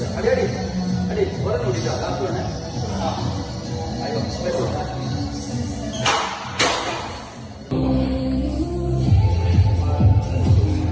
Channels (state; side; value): identical; both; correlation 1.00